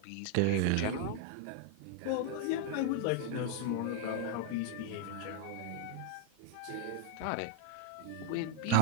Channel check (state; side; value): different; both; correlation 0.00